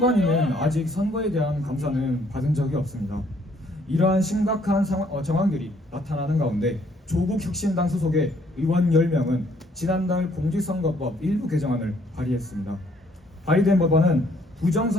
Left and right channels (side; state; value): both; normal; correlation 0.65